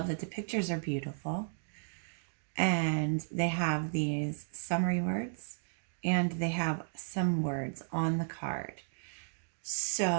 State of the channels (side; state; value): left; silent; digital silence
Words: that the pictures are beautiful, and they have these summary words, and they have some words on the card.